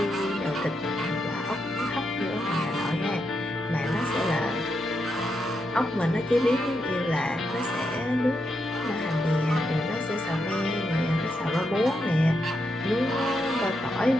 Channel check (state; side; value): normal; both; correlation 0.83